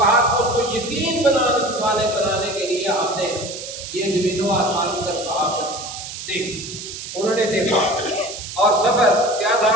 کہ اس کو یقین بنانے کے لیے ہم نے یہ زمین و آسمان کی طرف کہا کہ دیکھ، انہوں نے دیکھا، اور سفر کیا تھا،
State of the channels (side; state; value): right; noise; hiss, 9 dB below the sound